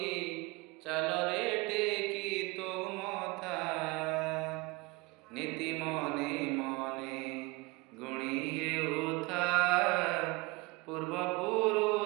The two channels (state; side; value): quieter; left; 24.7 dB